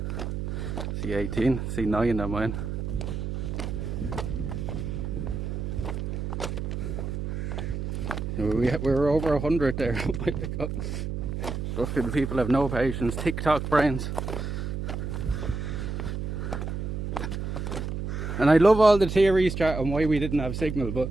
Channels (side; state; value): right; noise; hum, 4 dB below the sound